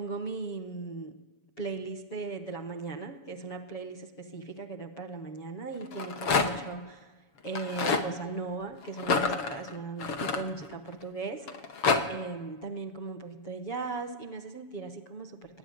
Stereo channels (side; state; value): right; late; 7.1 ms